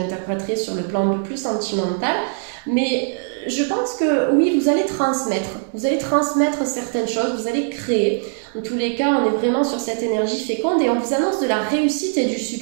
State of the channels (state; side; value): silent; left; digital silence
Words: sur le plan un peu plus sentimental, mais je pense que oui, vous allez transmettre certaines choses, vous allez créer. En tous les cas, on est vraiment sur cette énergie féconde et on vous annonce de la réussite et du